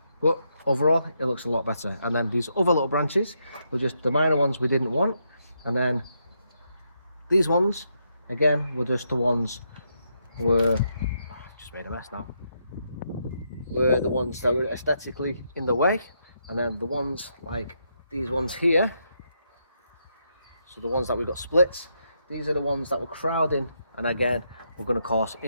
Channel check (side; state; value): both; inverted; correlation -0.79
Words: but overall it looks a lot better. And then these other little branches were just the minor ones we didn't want, and then these ones again were just the ones just made a mess now, were the ones that were aesthetically in the way. And then the ones like these ones here, so the ones that we got split, these are the ones that were crowding, and again we're going to cause